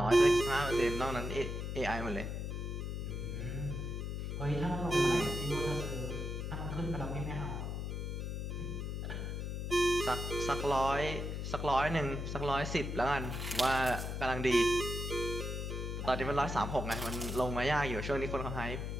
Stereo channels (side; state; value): left; noise; hum, 3 dB below the sound